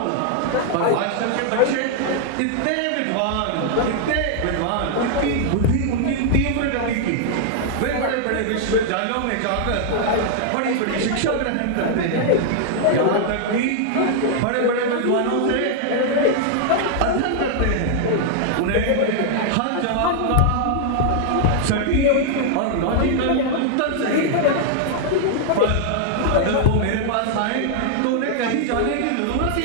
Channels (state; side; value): different; both; correlation -0.01